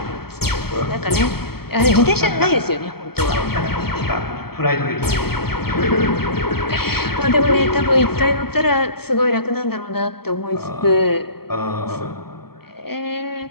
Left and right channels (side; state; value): right; late; 0.96 ms